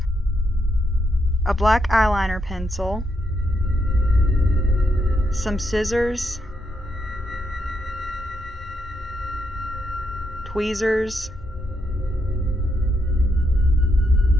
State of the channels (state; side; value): normal; both; correlation 0.79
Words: a black eyeliner pencil, some scissors, tweezers,